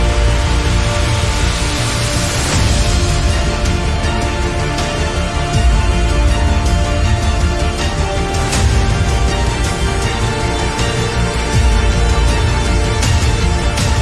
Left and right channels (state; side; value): identical; both; correlation 1.00